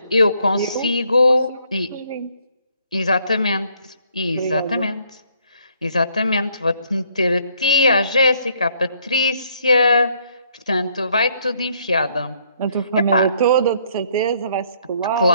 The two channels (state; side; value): inverted; both; correlation -0.67